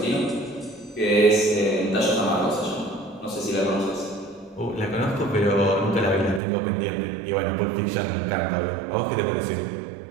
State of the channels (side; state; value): left; drops out; at 6.4 s